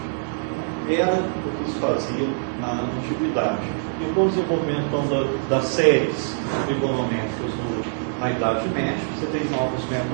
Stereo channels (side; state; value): left; silent; digital silence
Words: Era o que se fazia na antiguidade. E com o desenvolvimento então, das séries trigonométricas na Idade Média, você tem novos